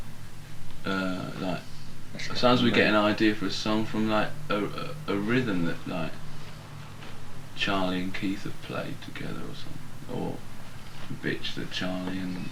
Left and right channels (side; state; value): both; identical; correlation 1.00